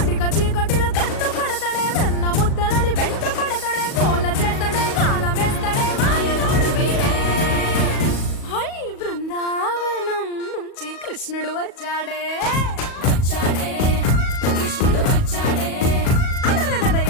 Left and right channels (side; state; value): right; late; 37 ms